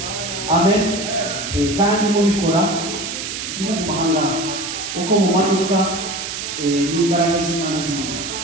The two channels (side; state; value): right; noise; hiss, 6 dB below the sound